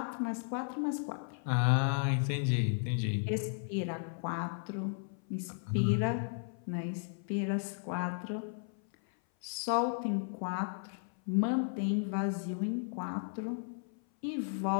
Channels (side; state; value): right; silent; 55 dB below the other